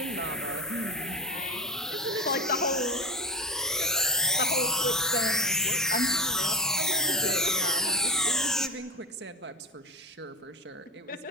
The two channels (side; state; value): both; normal; correlation 0.23